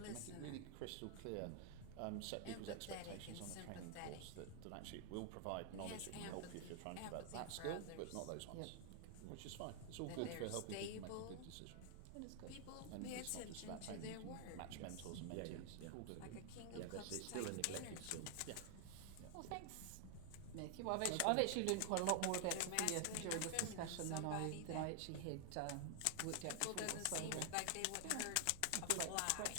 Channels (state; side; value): different; both; correlation 0.00